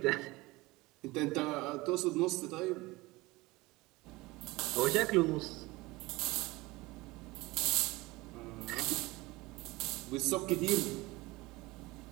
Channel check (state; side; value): quieter; left; 21.5 dB